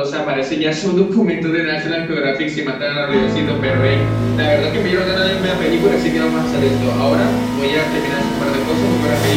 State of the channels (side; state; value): both; identical; correlation 1.00